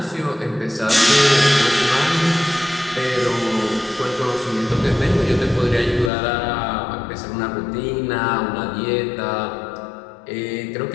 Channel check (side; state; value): right; drops out; at 6.1 s